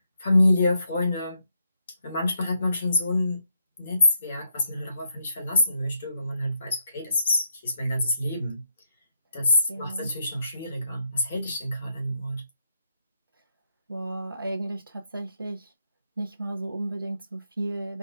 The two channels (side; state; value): both; inverted; correlation -0.81